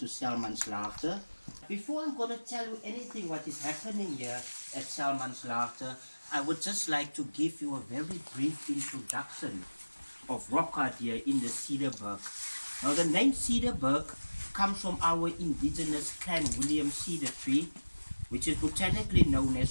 Salmanslaagte. Before I'm going to tell you anything what is happening here at Salmanslaagte, I would just like to give you a very brief introduction of rock art here in the Cederberg. Now the name Cederberg comes from our indigenous Clan William cedar tree, which is botanically known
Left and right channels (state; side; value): inverted; both; correlation -1.00